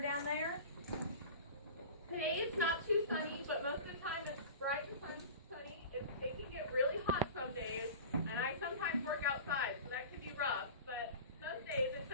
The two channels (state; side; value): inverted; both; correlation -0.35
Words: there? Today it's not too sunny, but most of the time it's bright and sunny. It can get really hot some days, and I sometimes work outside, so that can be rough. But most days it's